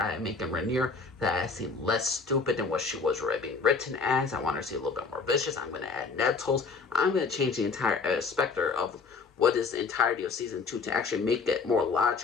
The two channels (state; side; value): quieter; right; 4.7 dB